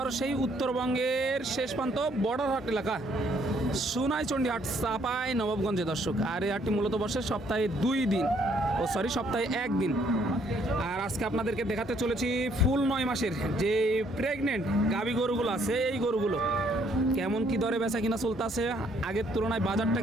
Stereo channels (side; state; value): both; normal; correlation 0.67